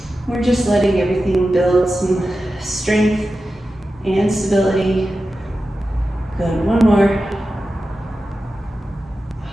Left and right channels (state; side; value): normal; both; correlation 0.93